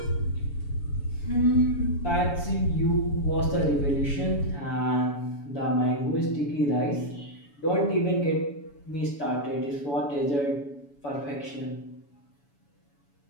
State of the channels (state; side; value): late; right; 7.0 ms